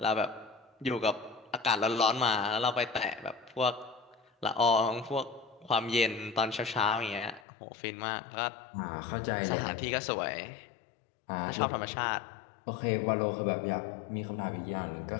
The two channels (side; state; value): right; drops out; at 7.4 s